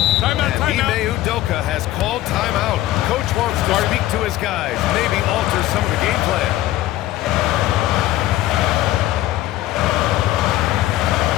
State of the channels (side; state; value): right; quieter; 15.4 dB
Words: Timeout, And timeout. Ime Udoka has called timeout. Coach wants to speak to his guys, maybe alter some of the game plan.